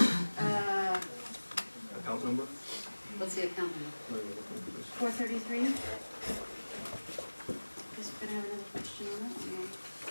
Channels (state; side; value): inverted; both; correlation -1.00